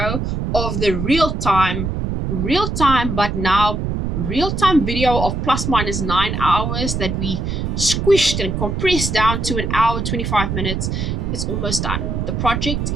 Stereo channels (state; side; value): noise; right; rumble, 2 dB below the sound